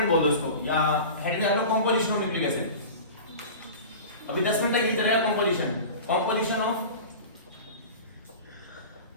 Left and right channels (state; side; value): inverted; both; correlation -0.34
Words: बोल दो इसको, या हेड में आलो कंपोजिशन ऑफ न्यूक्लिक एसिड। अभी 10 मिनट तक ये चलेगा कंपोजिशन ऑफ